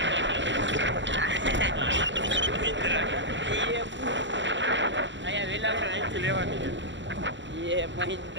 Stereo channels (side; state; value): left; late; 0.54 ms